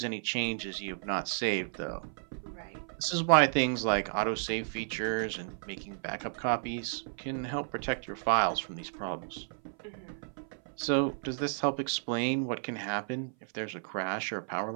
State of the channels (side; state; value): left; silent; 56 dB below the other